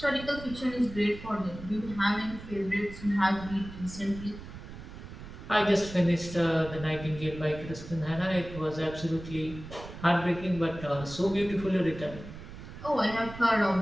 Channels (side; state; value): right; noise; rumble, 13 dB below the sound